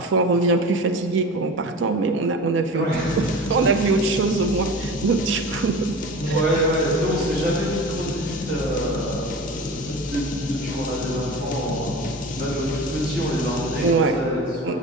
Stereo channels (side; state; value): both; normal; correlation 0.34